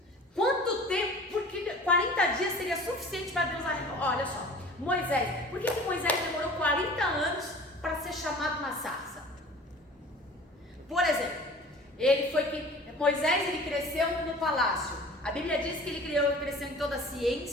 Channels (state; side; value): normal; both; correlation 0.44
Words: Quanto tempo? Porque 40 dias seria suficiente para Deus arrepender. Olha só, Moisés. Por que Moisés demorou 40 anos para ser chamado na sarça? Por exemplo, Moisés ele cresceu no palácio. A Bíblia diz que ele cresceu em toda a